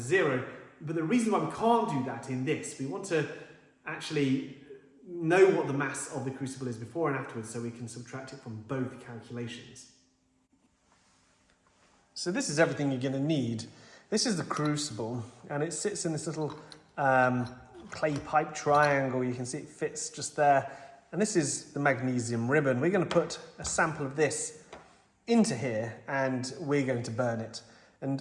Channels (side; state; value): both; identical; correlation 1.00